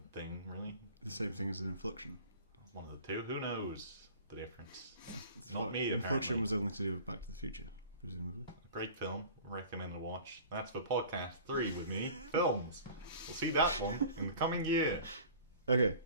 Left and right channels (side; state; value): both; inverted; correlation -0.43